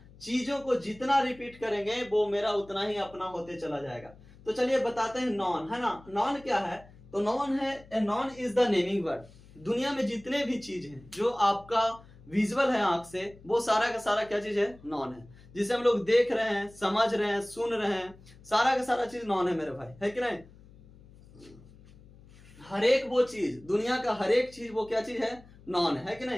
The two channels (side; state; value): left; noise; hum, 23 dB below the sound